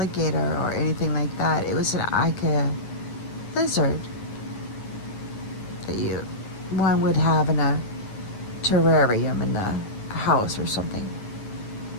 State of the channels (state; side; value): late; right; 9.7 ms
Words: or anything like that. It was like a lizard that one would have in a terrarium in the house or something.